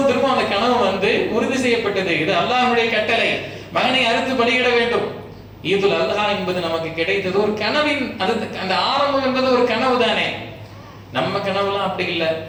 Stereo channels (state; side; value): identical; both; correlation 1.00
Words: அந்த கனவு உறுதி செய்யப்பட்டது. இது அல்லாஹ்வுடைய கட்டளை, மகனை அறுத்து பலியிட வேண்டும். ஈதுல் அல்ஹா என்பது நமக்கு கிடைத்தது ஒரு கனவின், அந்த ஆரம்பம் என்பது ஒரு கனவு தானே. நம்ம கனவுலாம் அப்படி இல்லை.